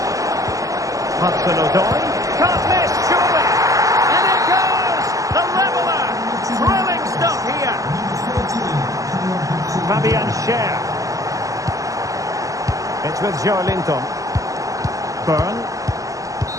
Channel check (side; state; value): left; late; 0.16 ms